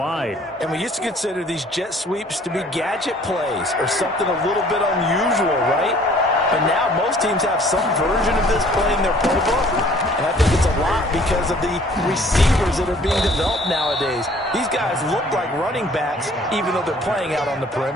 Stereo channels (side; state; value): both; normal; correlation 0.55